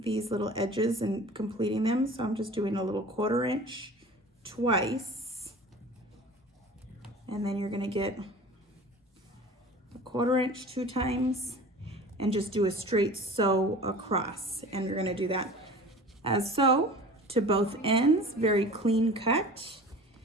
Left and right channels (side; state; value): both; normal; correlation 0.40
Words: these little edges and completing them. So I'm just doing a little 1/4 inch twice. And then you're gonna get a 1/4 inch 2 times and just do a straight sew across. And you're gonna do that as so to both ends, very clean cut.